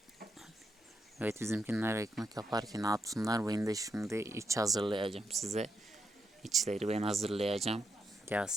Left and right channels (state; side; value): normal; both; correlation 0.82